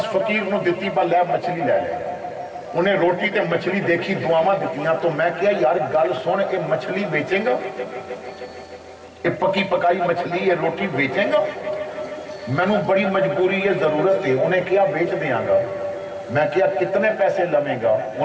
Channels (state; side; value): identical; both; correlation 1.00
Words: فقیر نوں دتی با لے مچھلی لے لے. انہیں روٹی تے مچھلی دیکھی, دعاواں دتیاں. تو میں کہا یار گل سن, اے مچھلی بیچیں گا, اے پکی پکائی مچھلی یہ روٹی بیچیں گا؟ مینوں بڑی مجبوری ہے, ضرورت ہے. انہیں کہا بیچ دیاں گا. میں کہا کتنے پیسے لویں گا؟